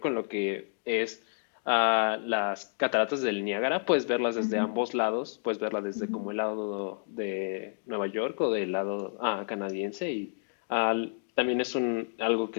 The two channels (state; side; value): silent; right; digital silence